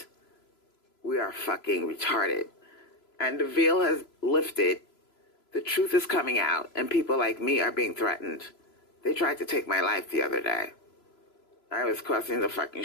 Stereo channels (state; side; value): late; right; 3.0 ms